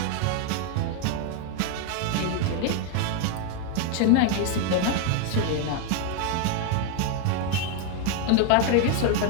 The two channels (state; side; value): different; both; correlation 0.01